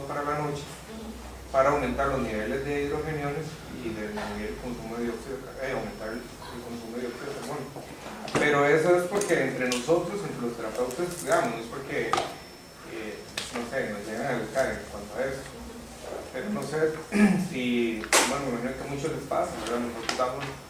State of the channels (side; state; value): both; identical; correlation 1.00